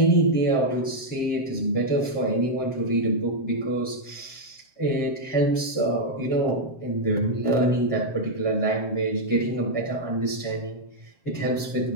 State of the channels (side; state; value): right; late; 7.5 ms